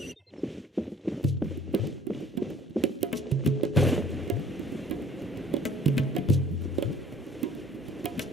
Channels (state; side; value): normal; both; correlation 0.54